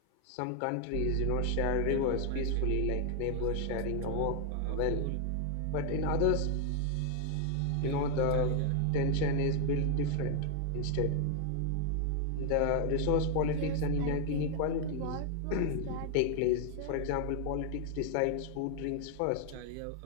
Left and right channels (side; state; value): both; different; correlation 0.00